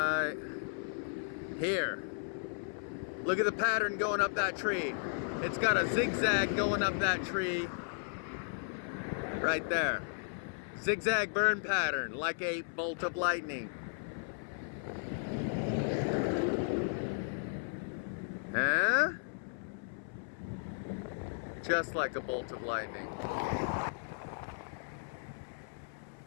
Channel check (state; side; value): silent; right; 54 dB below the other